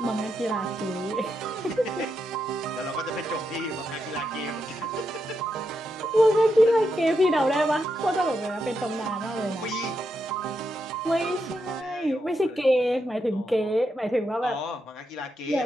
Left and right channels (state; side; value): normal; both; correlation 0.83